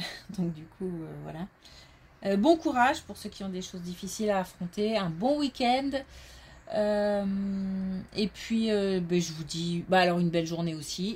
Donc du coup, voilà. Bon courage pour ceux qui ont des choses difficiles à affronter. Un bon week-end. Et puis, je vous dis, alors une belle journée aussi.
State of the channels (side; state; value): both; identical; correlation 1.00